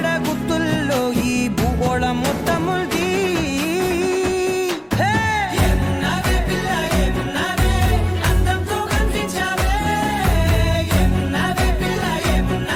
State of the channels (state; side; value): identical; both; correlation 1.00